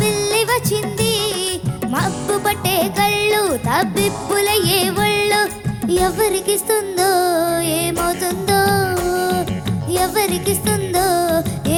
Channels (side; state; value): both; identical; correlation 1.00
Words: వచ్చింది. మబ్బు పట్టే కళ్ళు తబ్బిప్పుల ఏ ఒళ్ళు, ఎవరికిస్తుందో ఏమవుతుందో, ఎవరికిస్తుందో